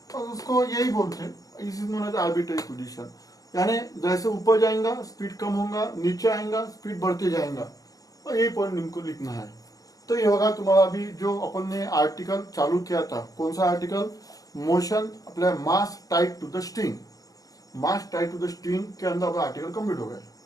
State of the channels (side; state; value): right; late; 0.17 ms